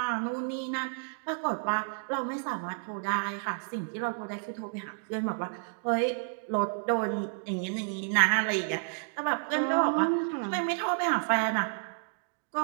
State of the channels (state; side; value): silent; left; digital silence